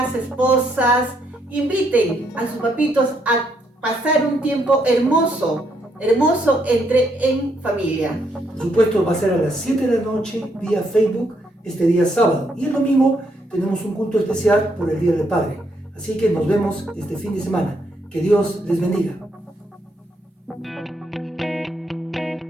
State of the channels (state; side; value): normal; both; correlation 0.74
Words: esposas, inviten a sus papitos a pasar un tiempo hermoso en familia. Por supuesto, va a ser a las 7 de la noche vía Facebook este día sábado. Y el domingo tenemos un culto especial por el Día del Padre. Así que nos vemos este fin de semana. Que Dios les bendiga.